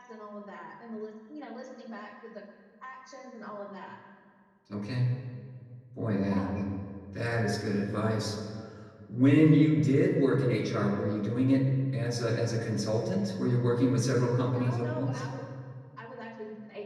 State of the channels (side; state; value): both; identical; correlation 1.00